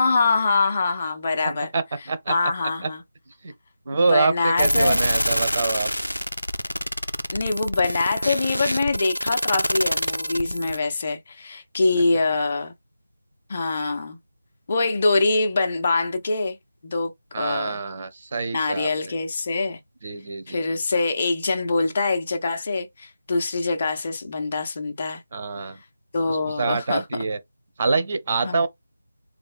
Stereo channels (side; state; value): both; inverted; correlation -0.87